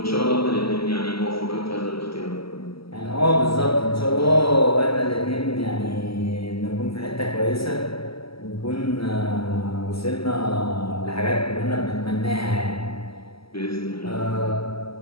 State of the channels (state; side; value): late; right; 0.75 ms